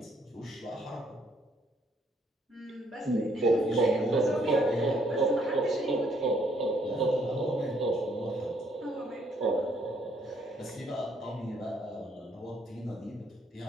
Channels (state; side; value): normal; both; correlation 0.68